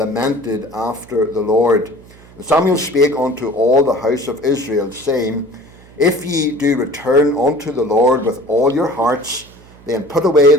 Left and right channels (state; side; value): noise; right; hum, 24 dB below the sound